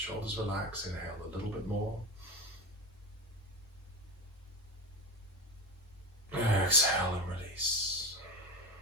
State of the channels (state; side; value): normal; both; correlation 0.19